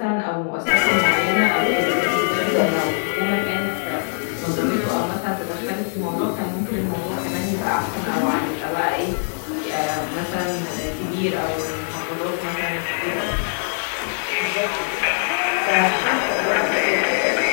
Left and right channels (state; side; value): silent; right; digital silence